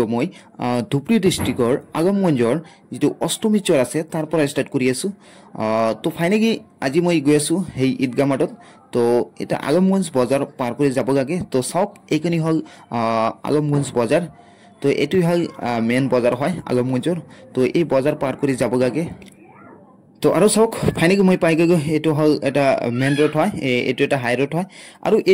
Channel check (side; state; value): both; identical; correlation 1.00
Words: মই ধুবুৰী ডিস্ট্ৰিক্টৰ আগমগঞ্জৰ যেটো অষ্টমী চৰ আছে তাৰ পৰা ষ্টাৰ্ট কৰি আছো। তো ফাইনেলি আজি মই গৈ আছো সেই ঈদগাহ মাঠত। তো এটা আগমগঞ্জ বজাৰ পাৰ কৰি যাব লাগে। তো সব এইখিনি হল আগমগঞ্জ বজাৰ। তো এটুই হল মেন বজাৰ হয় আগমগঞ্জৰ। তো এই বজাৰ পাৰ কৰি যাব লাগে। তো আৰু সক ফাইনেলি মই পাই গৈ এটো হল এটা মেন ৰোড হয়, এটো এটা হাই ৰোড হয়। আৰু